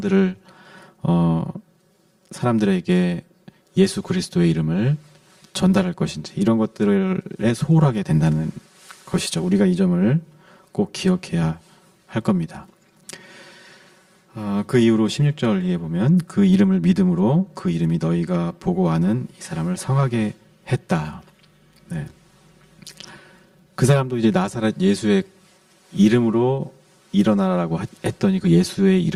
사람들에게 예수 그리스도의 이름을 전달할 것인지 이런 것들에 소홀하게 된다는 것이죠. 우리가 이 점을 꼭 기억해야 할 겁니다. 그 이후로 16절 에 보면 그 이름을 믿음으로 그 이름이 너희가 보고 아는 이 사람을 성하게 했다. 네. 그 사람도 이제 나사렛 예수의 이름으로 일어나라고 했더니 그 예수의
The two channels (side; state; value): both; identical; correlation 1.00